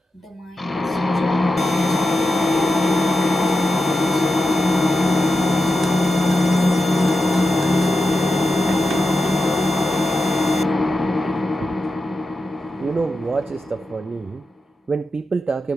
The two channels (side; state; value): both; normal; correlation 0.90